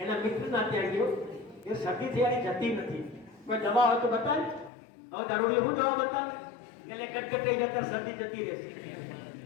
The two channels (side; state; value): right; drops out; at 4.7 s